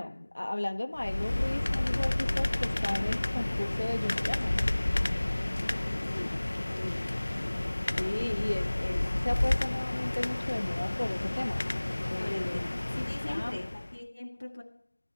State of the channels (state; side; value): inverted; both; correlation -1.00